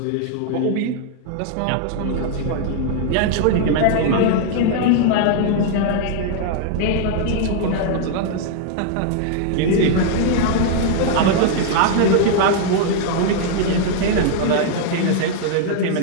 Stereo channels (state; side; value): different; both; correlation 0.00